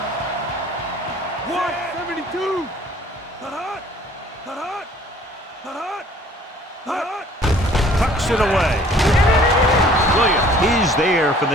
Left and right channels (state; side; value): normal; both; correlation 0.54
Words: Tucks it away. Williams is there for